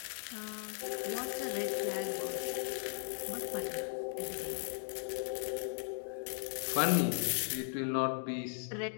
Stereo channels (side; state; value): right; silent; digital silence